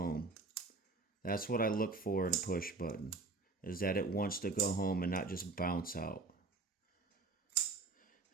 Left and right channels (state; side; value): quieter; left; 3.6 dB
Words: That's what I look for in a push button, is that it wants to go home and not just bounce out.